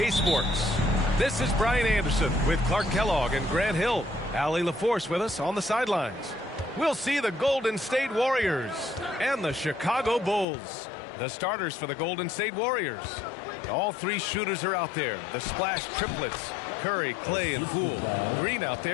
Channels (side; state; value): right; drops out; at 10.5 s